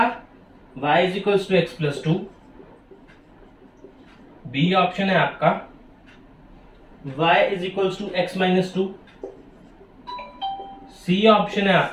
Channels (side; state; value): both; identical; correlation 1.00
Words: y is equals to x plus two, B option है आपका y is equals to x minus two, C option है